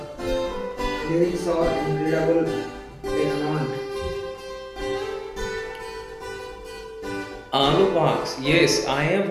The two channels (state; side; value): identical; both; correlation 1.00